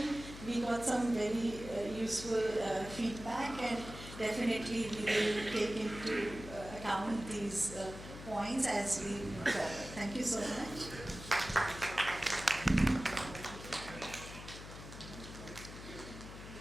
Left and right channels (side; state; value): left; noise; hum, 12 dB below the sound